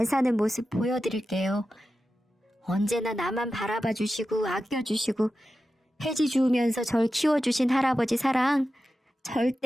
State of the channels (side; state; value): both; normal; correlation 0.92